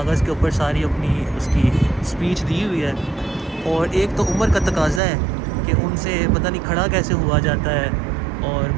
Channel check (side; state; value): left; drops out; at 5.0 s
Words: के ऊपर सारी अपनी उसकी स्पीच दी हुई है, और एक तो उम्र का तकाज़ा है कि उनसे पता नहीं खड़ा कैसे हुआ जाता है और